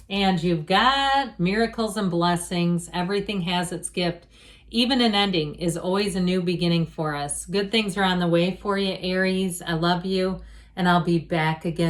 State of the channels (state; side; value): identical; both; correlation 1.00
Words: And you've got miracles and blessings. Everything has its gift. Even an ending is always a new beginning for us. Good things are on the way for you, Aries. I love you. and I'll be back